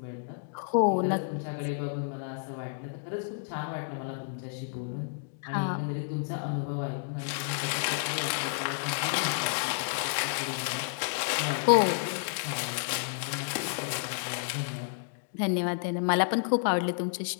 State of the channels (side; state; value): right; silent; digital silence